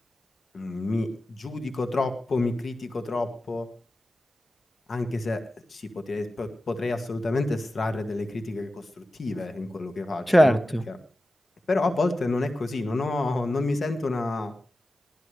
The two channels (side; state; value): both; normal; correlation 0.93